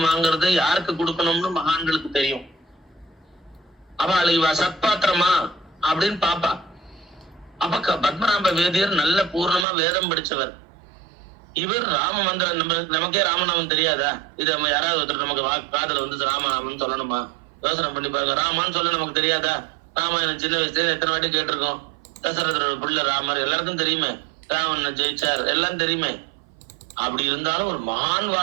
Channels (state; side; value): drops out; left; at 9.7 s